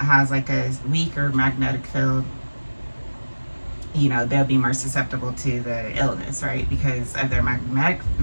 has a weaker magnetic field. They'll be more susceptible to the illness, right? Because of their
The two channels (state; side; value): inverted; both; correlation -1.00